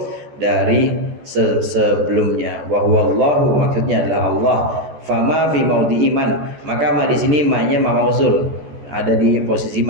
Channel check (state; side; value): late; left; 14 ms